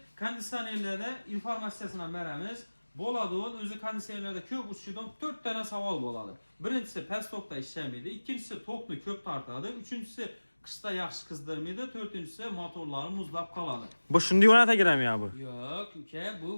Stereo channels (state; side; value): inverted; both; correlation -1.00